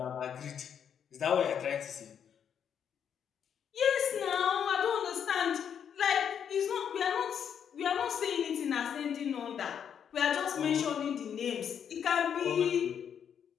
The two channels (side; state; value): right; quieter; 8.2 dB